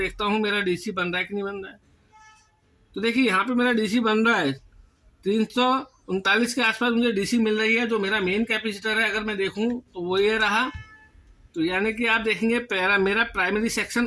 हूँ मेरा DC बन रहा है कि नहीं बन रहा है। तो देखिए यहाँ पे मेरा DC बन रहा है, 339 के आसपास मुझे DC मिल रही है। जो मेरा मेन कैपेसिटर है अगर मैं देखूँ तो वो ये रहा। तो यानी कि आप देखेंगे मेरा प्राइमरी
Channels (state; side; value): identical; both; correlation 1.00